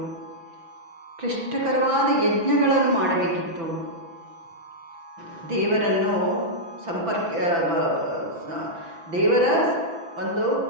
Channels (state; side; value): late; left; 6.0 ms